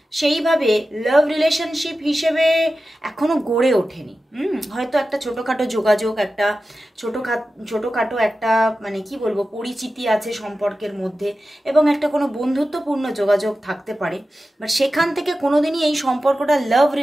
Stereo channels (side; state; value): both; normal; correlation 0.93